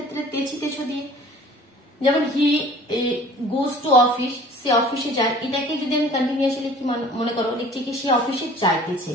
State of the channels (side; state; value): both; normal; correlation 0.48